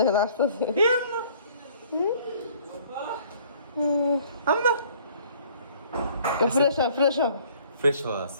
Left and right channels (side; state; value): both; inverted; correlation -0.57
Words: আসতেছে, ফ্রেশ হওয়া